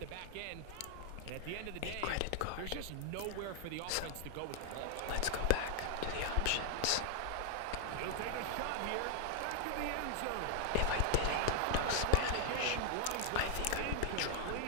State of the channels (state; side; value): different; both; correlation 0.00